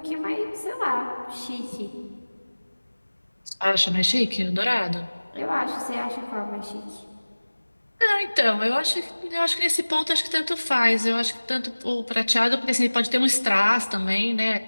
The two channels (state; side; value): inverted; both; correlation -1.00